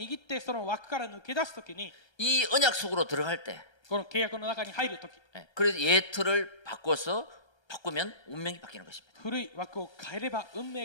ってその枠から抜け出すときに、 이 언약 속으로 들어갈 때, この契約の中に入るとき、 그래서 예틀을 바꿔서 바꾸면 운명이 바뀌는 것입니다. 古い枠を変えれば運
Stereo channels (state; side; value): late; right; 1.3 ms